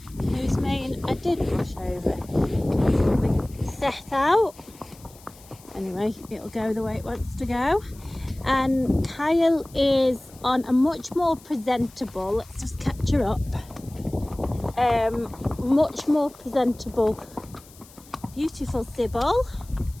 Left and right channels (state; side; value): noise; left; hiss, 23 dB below the sound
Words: whose mane I did brush over. We set out. Anyway, it'll go the way it wants to go. And Kyle is on a much more presentable, let's just catch her up, much more presentable, beautiful Sybil.